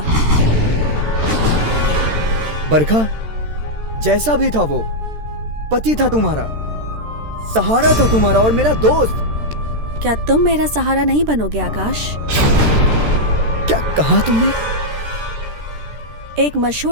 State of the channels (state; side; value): late; left; 13 ms